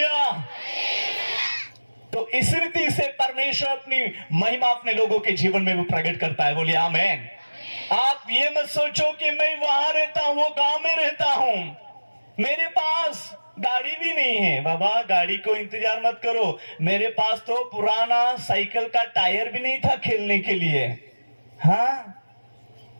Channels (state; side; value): inverted; both; correlation -1.00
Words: तो इस रीति से परमेश्वर अपनी महिमा अपने लोगों के जीवन में वो प्रकट करता है। बोलिए आमेन। आप ये मत सोचो कि मैं वहां रहता हूं, वो गांव में रहता हूं, मेरे पास गाड़ी भी नहीं है। बाबा गाड़ी को इंतजार मत करो, मेरे पास तो पुराना साइकिल का टायर भी नहीं था खेलने के लिए। हाँ,